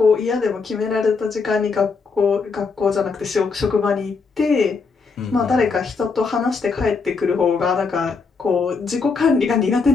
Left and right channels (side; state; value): right; quieter; 4.7 dB